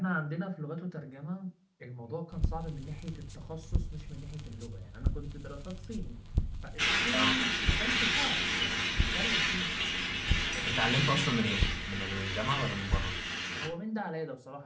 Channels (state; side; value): identical; both; correlation 1.00